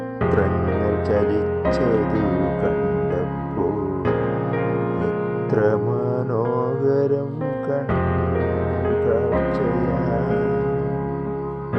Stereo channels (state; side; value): identical; both; correlation 1.00